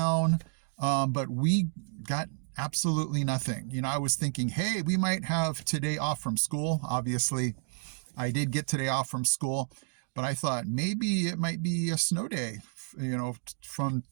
but we got absolutely nothing. I was thinking, hey, we might have today off from school. Obviously, I did get today off from school, but I thought maybe it might be a snow day, from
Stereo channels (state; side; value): silent; left; 57 dB below the other